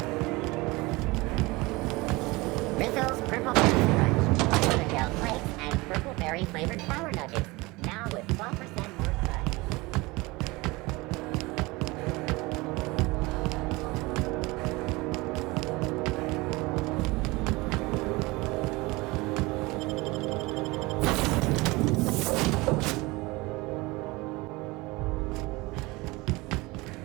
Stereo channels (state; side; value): quieter; left; 22.9 dB